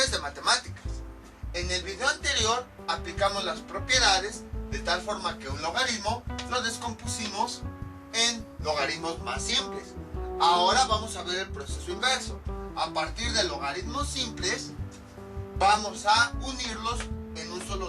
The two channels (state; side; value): identical; both; correlation 1.00